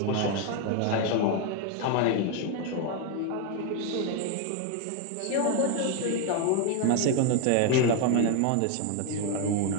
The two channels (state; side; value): different; both; correlation 0.01